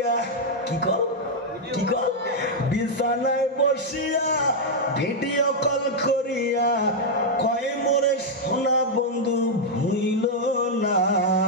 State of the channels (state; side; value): normal; both; correlation -0.02